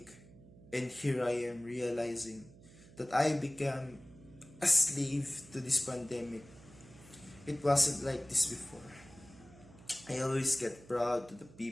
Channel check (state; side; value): noise; right; hum, 21 dB below the sound